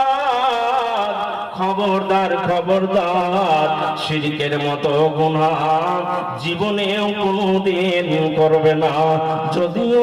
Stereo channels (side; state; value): both; identical; correlation 1.00